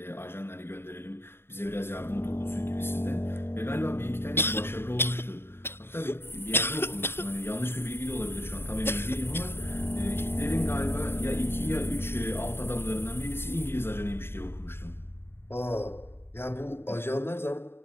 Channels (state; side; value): late; right; 0.11 ms